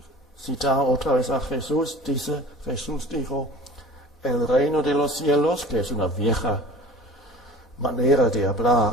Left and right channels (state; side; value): normal; both; correlation 0.42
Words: Citar otra vez a Jesús, Jesús dijo, el reino de los cielos, que es una vieja manera de